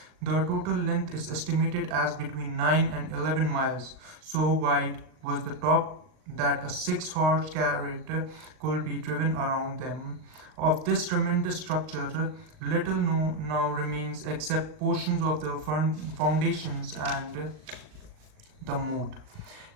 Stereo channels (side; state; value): left; late; 38 ms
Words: The total length is estimated as between 9 and 11 miles. So wide was the top that a six-horse carriage could be driven around them. Of this tremendous structure, little now remains except portions of the foundations and the moat.